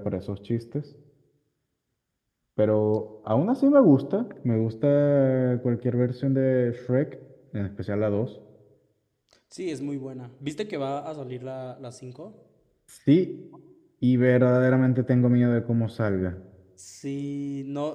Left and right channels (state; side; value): identical; both; correlation 1.00